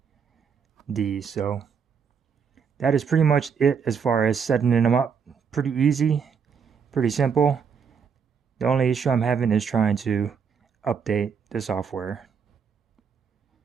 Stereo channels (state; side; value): quieter; left; 6.5 dB